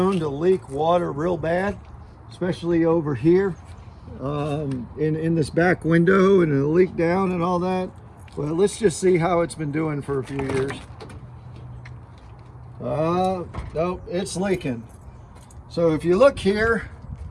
to leak water real bad, especially over here in this back window, and it'll leak down and all that. Well, let's just see how it's been doing for a few years. Nope, it's leaking. So if you look here,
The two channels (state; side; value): identical; both; correlation 1.00